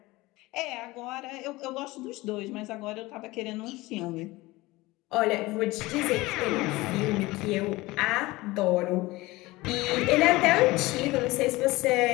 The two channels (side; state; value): right; quieter; 20.4 dB